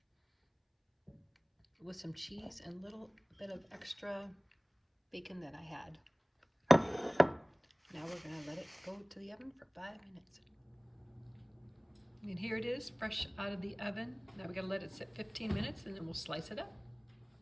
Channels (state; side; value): identical; both; correlation 1.00